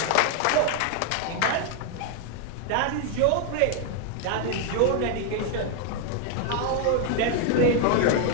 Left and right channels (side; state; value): both; different; correlation 0.01